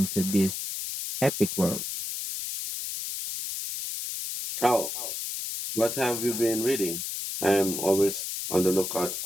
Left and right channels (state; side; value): noise; left; hiss, 5 dB below the sound